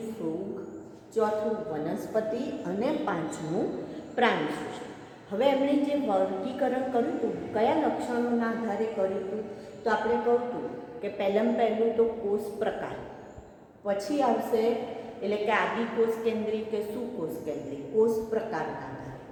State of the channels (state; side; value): identical; both; correlation 1.00